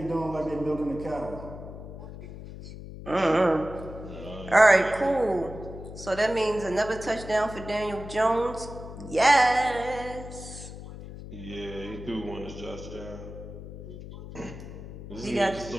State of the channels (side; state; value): left; noise; hum, 12 dB below the sound